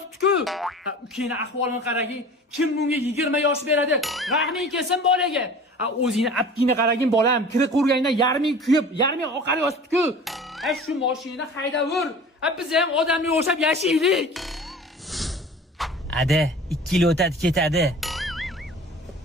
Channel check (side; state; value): both; normal; correlation 0.41